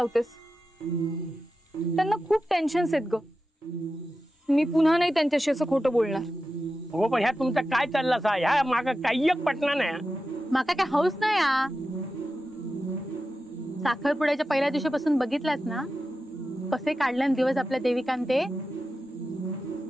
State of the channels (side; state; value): both; normal; correlation 0.92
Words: त्यांना खूप टेन्शन्स आहेत ग. मी पुन्हा नाही त्यांच्याशी असं खोटं बोलणार. हो, पण ह्या तुमचा काय चालला सा? ह्या माग काही एक पटना नाही. माका काय हौस नाही आ. साखरपुड्याच्या पहिल्या दिवशीपासून बघितलास ना कसे काढले दिवस आपल्या देविकांते.